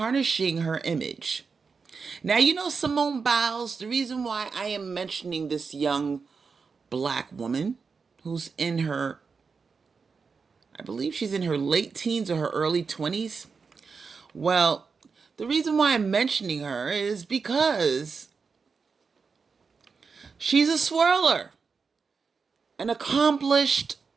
her image. Now, you know Simone Biles, the reason why I am mentioning this young Black woman who's in her, I believe she's in her late teens or her early 20s. Well, the reason why I'm mentioning her is because she's a swirler, an accomplished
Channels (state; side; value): quieter; left; 5.1 dB